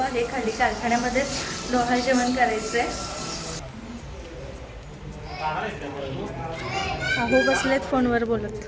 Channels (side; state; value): both; identical; correlation 1.00